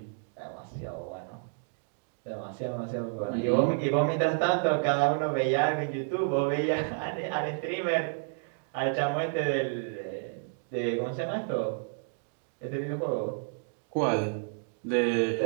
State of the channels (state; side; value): silent; left; digital silence